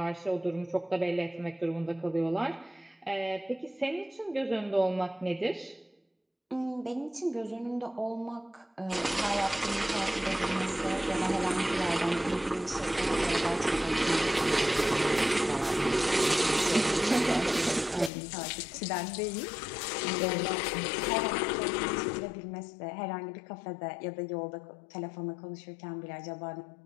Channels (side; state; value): right; drops out; at 18.1 s